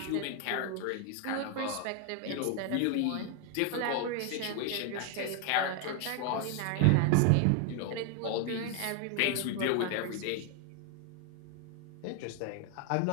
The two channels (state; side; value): different; both; correlation 0.01